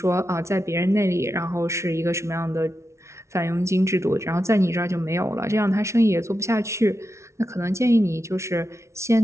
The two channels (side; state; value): left; late; 0.13 ms